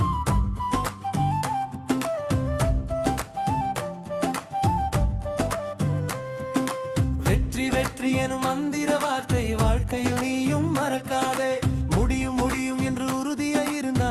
வெற்றி வெற்றி எனும் மந்திர வார்த்தை வாழ்க்கையில் நீயும் மறக்காதே. முடியும் முடியும் என்று உறுதியாய்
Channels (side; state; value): both; identical; correlation 1.00